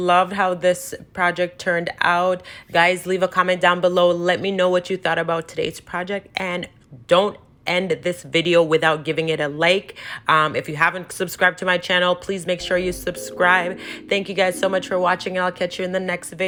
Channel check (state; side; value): identical; both; correlation 1.00